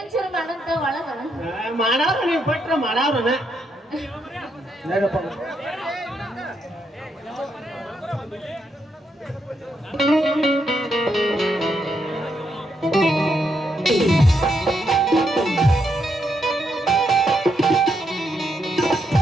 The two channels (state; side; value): normal; both; correlation 0.79